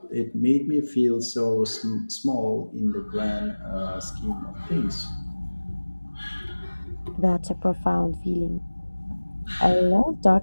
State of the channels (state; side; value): inverted; both; correlation -1.00